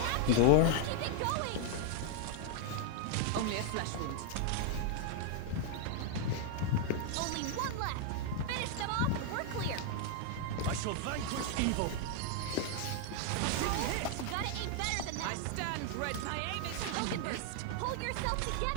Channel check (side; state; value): both; different; correlation 0.00